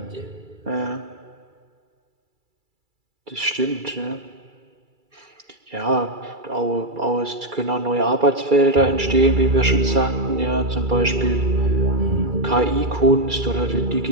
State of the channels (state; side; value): late; left; 2.3 ms